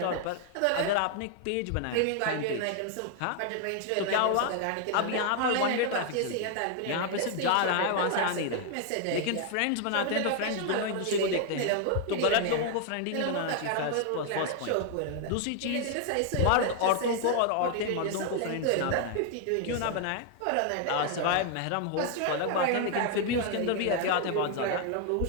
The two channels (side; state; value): both; different; correlation 0.00